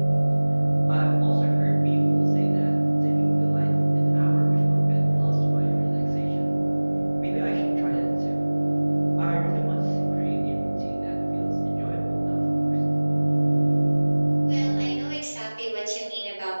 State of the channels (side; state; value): both; inverted; correlation -1.00